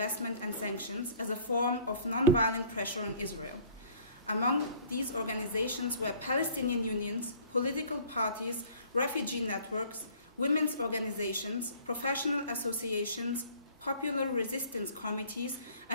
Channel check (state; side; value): inverted; both; correlation -0.52